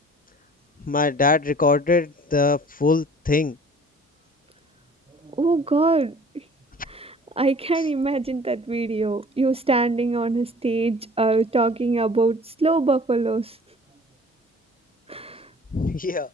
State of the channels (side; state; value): both; normal; correlation 0.49